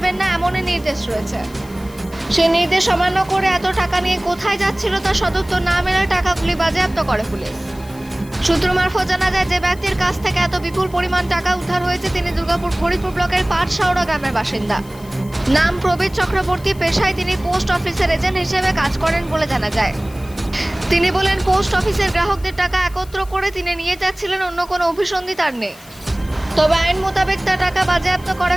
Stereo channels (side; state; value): left; noise; hiss, 23 dB below the sound